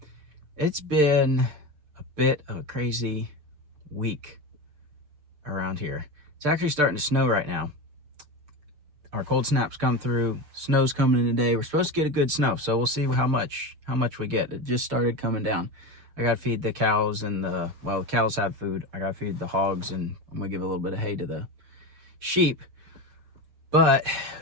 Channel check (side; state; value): left; late; 6.7 ms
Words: It's been a bit of a crazy week around here. It's actually starting to snow right now. Our cold snaps come through, snow's coming in today. We're supposed to get a good snow, so we'll see how much we get. It just started coming down. I gotta feed the cows and the cows have food. I gotta feed the hogs, and I'm gonna give a little bit of hay to the sheep. But